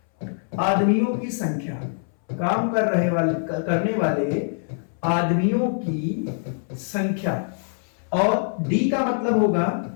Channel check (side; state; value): right; silent; 63 dB below the other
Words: आदमियों की संख्या, काम करने वाले आदमियों की संख्या, और D का मतलब होगा